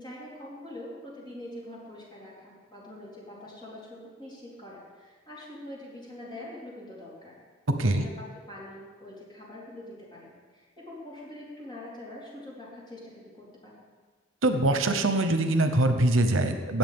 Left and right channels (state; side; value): normal; both; correlation 0.54